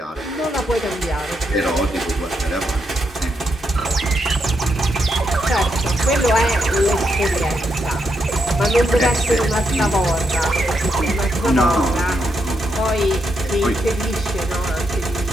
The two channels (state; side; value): normal; both; correlation 0.81